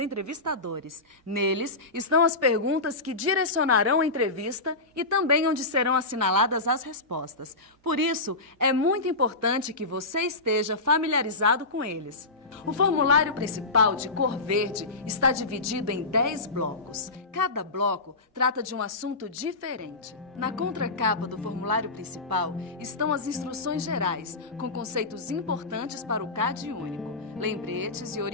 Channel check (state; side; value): quieter; right; 3.1 dB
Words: Neles estão as perguntas que direcionarão a entrevista e também onde serão assinaladas as respostas. Por isso, é muito importante que você esteja familiarizado com eles. O formulário principal, de cor verde, está dividido em 10 blocos. Cada bloco trata de um assunto diferente. Na contracapa do formulário principal estão as instruções gerais, com conceitos importantes para o CAD único, lembretes e